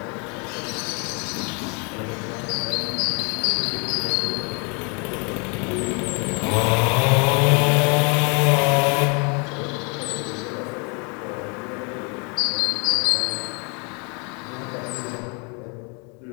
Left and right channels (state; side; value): quieter; right; 34.5 dB